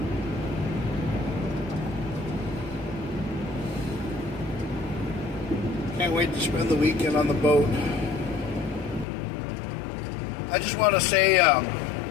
Can't wait to spend the weekend on the boat. I just want to say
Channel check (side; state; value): right; drops out; at 9.1 s